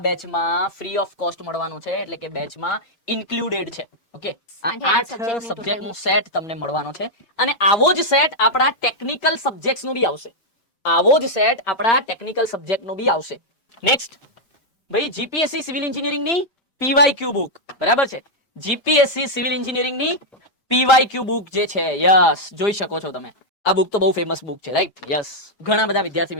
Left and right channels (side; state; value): right; late; 5.1 ms